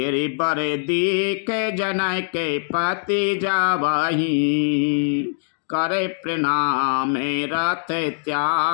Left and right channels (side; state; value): right; silent; digital silence